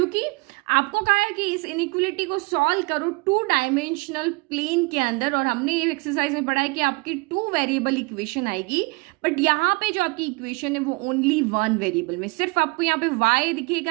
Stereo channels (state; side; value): quieter; left; 27.2 dB